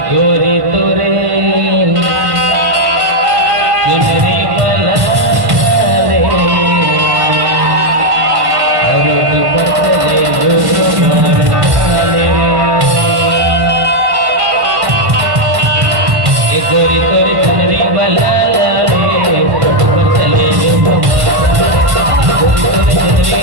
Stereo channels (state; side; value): late; left; 1.1 ms